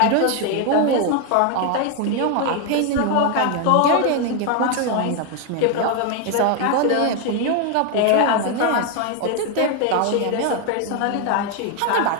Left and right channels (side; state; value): both; different; correlation 0.01